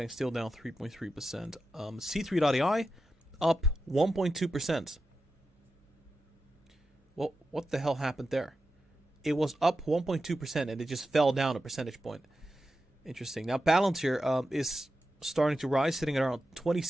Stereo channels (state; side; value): normal; both; correlation 0.90